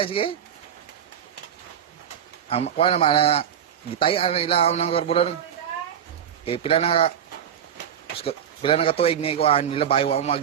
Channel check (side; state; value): left; quieter; 9.2 dB